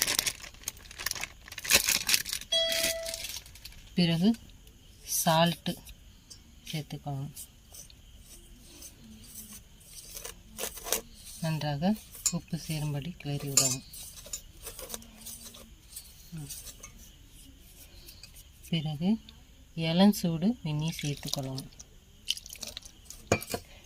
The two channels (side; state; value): both; identical; correlation 1.00